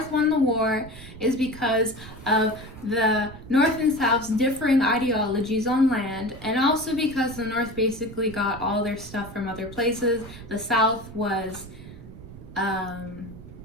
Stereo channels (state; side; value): noise; right; rumble, 15 dB below the sound